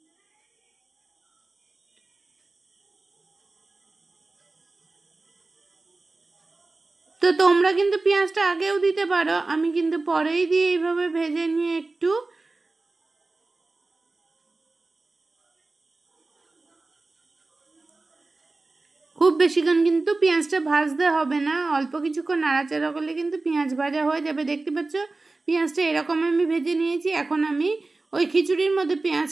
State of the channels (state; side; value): quieter; left; 3.4 dB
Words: তো তোমরা কিন্তু পেঁয়াজটা আগেও দিতে পারো, আমি কিন্তু পরেই দিয়ে এইভাবে ভেজে নিয়ে একটু খুব বেশিক্ষণ কিন্তু পেঁয়াজটা ভাজতে হবে না, অল্প কিছুক্ষণ নাড়াচাড়া করলে কিন্তু পেঁয়াজ ভাজা হয়ে যাবে। দেখতে পাচ্ছ পেঁয়াজটা এরকম আমি ভেজে নিয়েছি। এখন আমি ওই খিচুড়ির মধ্যে